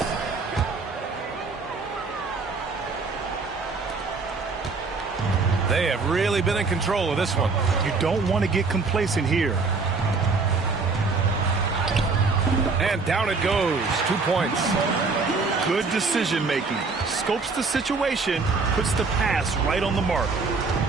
They have really been in control of this one. You don't want to get complacent here. And down it goes. 2 points. Good decision making. Scopes the situation, puts the pass right on the mark.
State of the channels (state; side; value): quieter; left; 4.3 dB